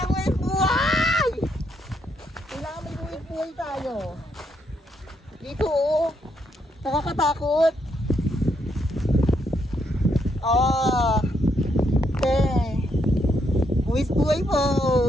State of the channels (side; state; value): both; normal; correlation 0.76